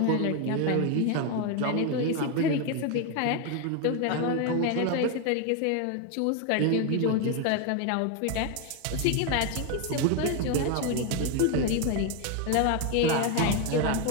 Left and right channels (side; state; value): both; different; correlation 0.01